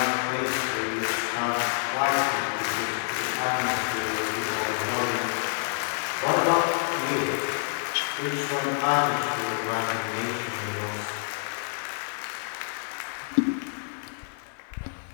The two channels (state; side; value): silent; right; digital silence